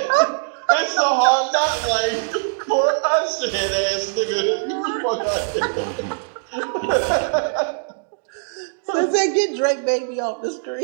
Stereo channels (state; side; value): silent; left; digital silence